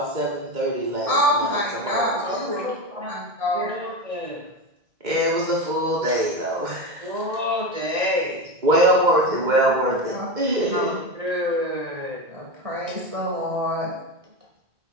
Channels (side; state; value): left; late; 1.9 ms